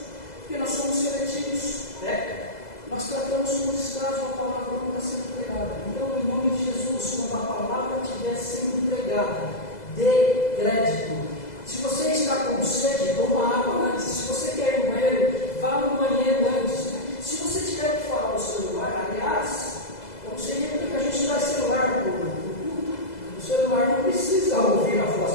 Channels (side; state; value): right; late; 2.0 ms